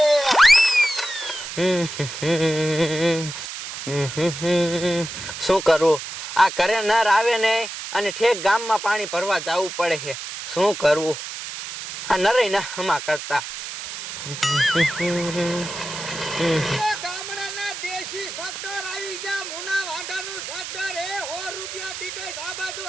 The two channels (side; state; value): right; noise; hiss, 8 dB below the sound